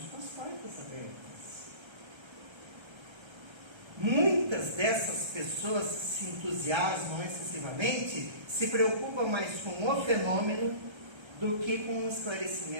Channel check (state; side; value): late; left; 1.3 ms